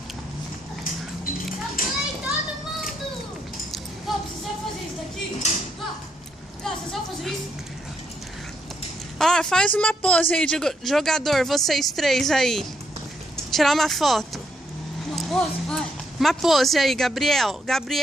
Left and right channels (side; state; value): both; normal; correlation 0.75